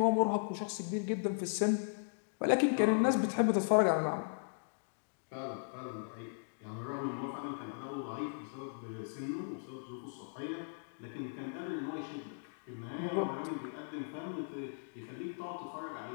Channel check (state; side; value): silent; right; digital silence